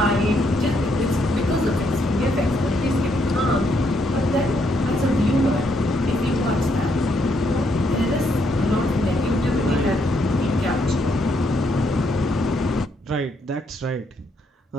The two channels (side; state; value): both; normal; correlation 0.75